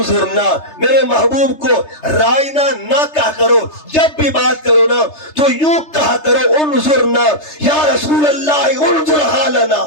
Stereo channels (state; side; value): late; right; 3.3 ms